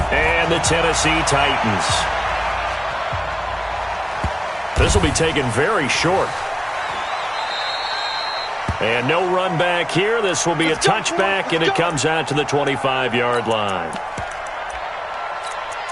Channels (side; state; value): both; identical; correlation 1.00